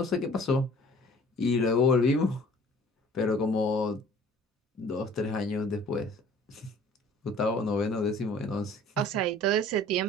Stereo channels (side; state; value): both; normal; correlation 0.50